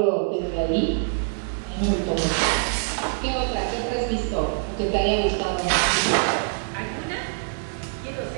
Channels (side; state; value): left; silent; 62 dB below the other